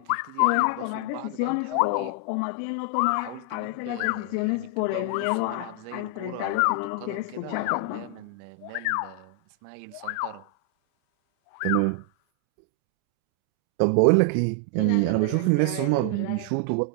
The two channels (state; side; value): different; both; correlation 0.00